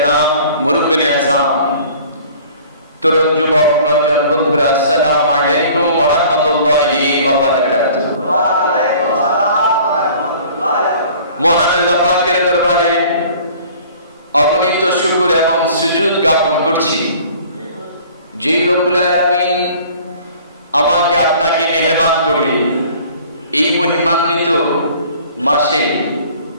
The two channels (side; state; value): both; inverted; correlation -0.50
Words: মুরব্বিনে আযম, তরুণ যুবক নওজোয়ান বন্ধুরা, আসসালামু আলাইকুম ওয়া রাহমাতুল্লাহি ওয়া বারাকাতুহু। ওয়া আলাইকুম আসসালাম ওয়া রাহমাতুল্লাহি। মহান আল্লাহ পাকের দরবারে অগণিত শুকর এবং সুজুদ জ্ঞাপন করছি, যেই রব্বুল আলামিন আমাকে আপনাকে মেহেরবান করে এই মহিমান্বিত মাসে,